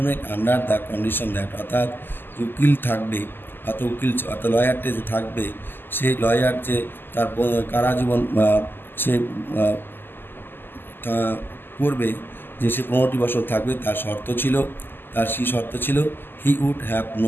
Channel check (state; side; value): late; right; 0.096 ms